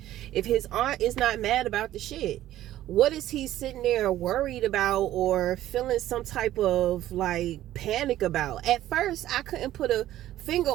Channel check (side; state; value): left; quieter; 13.6 dB